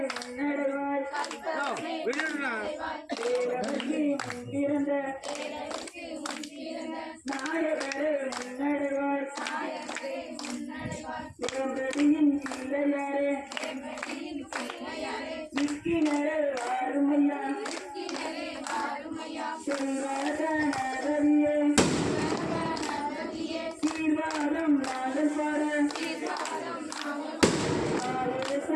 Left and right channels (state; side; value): identical; both; correlation 1.00